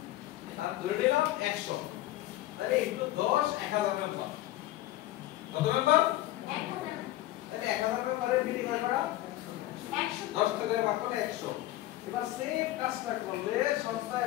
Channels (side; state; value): right; quieter; 15.6 dB